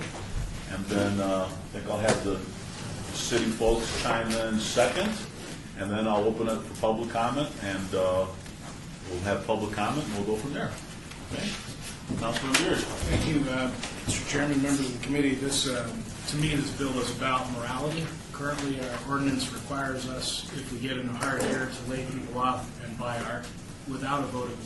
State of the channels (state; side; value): identical; both; correlation 1.00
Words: And then I think I'll have the city folks chime in second, and then I'll open it for public comment, and we'll have public comment, and we'll go from there. Okay? Councilman Beers. Thank you, Mr. Chairman, members of the committee. This, to me, this bill is about morality. Currently, our ordinance requires us, if we get in a hard air, to lay people off and buy art without a vote of the